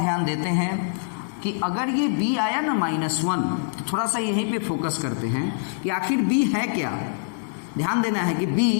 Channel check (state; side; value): silent; right; digital silence